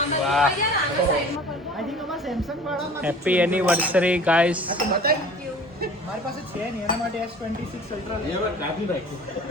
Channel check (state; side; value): normal; both; correlation 0.45